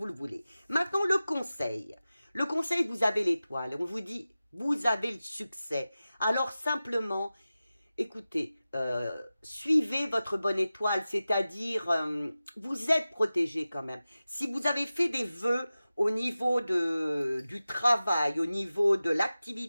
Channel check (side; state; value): both; inverted; correlation -0.95